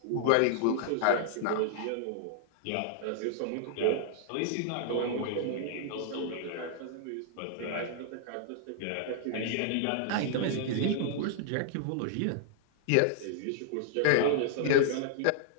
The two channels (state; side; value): different; both; correlation -0.01